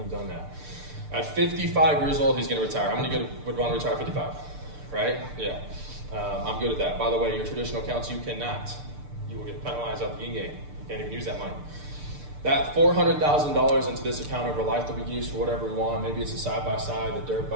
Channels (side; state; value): left; late; 6.7 ms